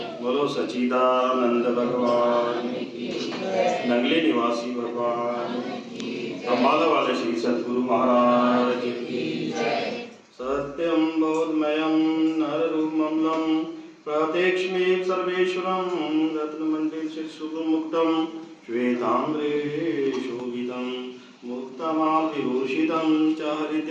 सच्चिदानंद भगवान, नगले निवासी भगवान, अम्बाला वाले श्री सद्गुरु महाराज की। सत्यम बोधमयम नररूपममलं प्रत्यक्षमेव सर्वेश्वरं रत्नमण्डित सुगुणमुक्तं श्वेताम्रे शोभितं मुक्तमाल्यभूषितं च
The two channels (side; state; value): both; identical; correlation 1.00